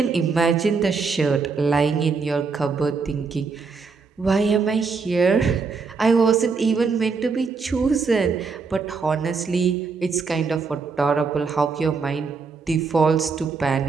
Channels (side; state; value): left; quieter; 4.8 dB